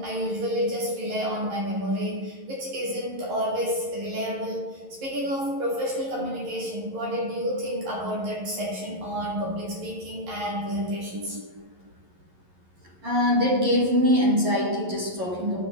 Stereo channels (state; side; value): late; left; 11 ms